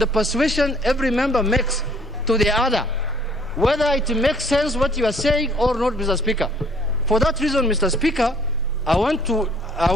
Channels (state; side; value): normal; both; correlation 0.59